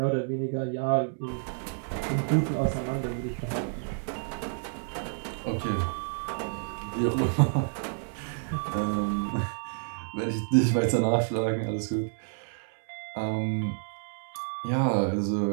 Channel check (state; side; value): silent; left; 58 dB below the other